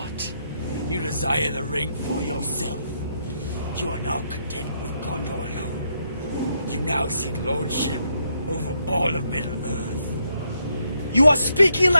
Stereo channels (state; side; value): inverted; both; correlation -0.77